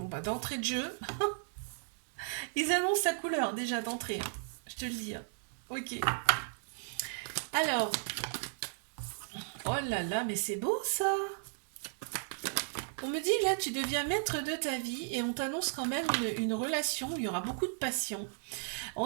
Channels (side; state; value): left; silent; digital silence